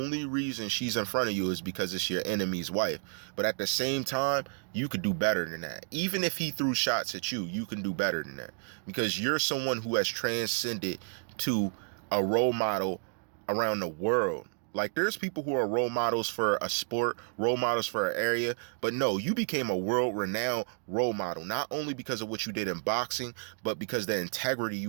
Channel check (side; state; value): left; silent; 57 dB below the other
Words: reason she's in front of you is because it's your enemy's wife. But at the same time, you could do better than that. Even if he threw shots at you, you can do better than that, because you're someone who has transcended to a role model around the world. Like, there's people who are role models for a sport, role models for an area, but no, you became a world-renowned role model, not only because of what you did in boxing, but because the integrity